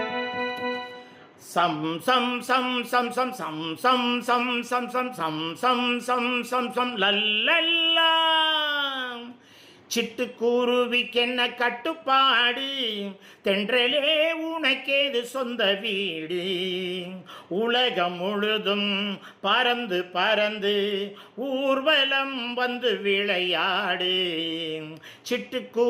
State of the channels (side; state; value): both; identical; correlation 1.00